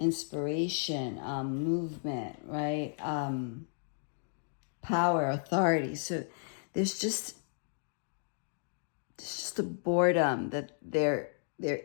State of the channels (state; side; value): silent; right; digital silence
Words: movement, right? Power, authority. So there's just a boredom that there